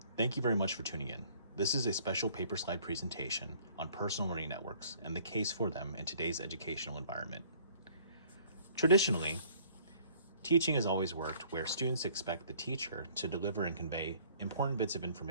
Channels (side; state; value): both; inverted; correlation -0.57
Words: Thank you very much for tuning in. This is a special paper slide presentation on personal learning networks and the case for them in today's educational environment. Traditionally, teaching has always worked where students expect the teacher to deliver and convey important bits of